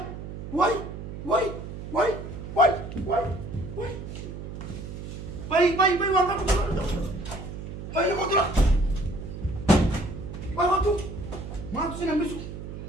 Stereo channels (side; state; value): right; noise; hum, 9 dB below the sound